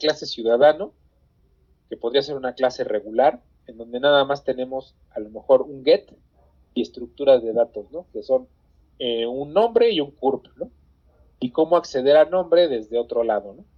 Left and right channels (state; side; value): identical; both; correlation 1.00